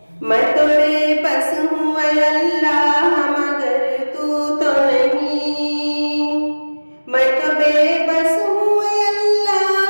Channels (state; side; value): inverted; both; correlation -1.00